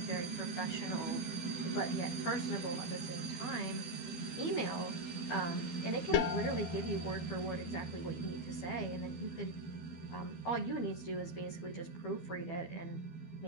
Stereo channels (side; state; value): right; late; 12 ms